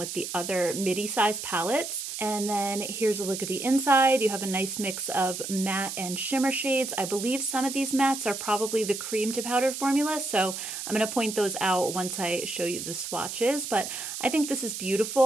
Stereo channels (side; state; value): right; noise; hiss, 6 dB below the sound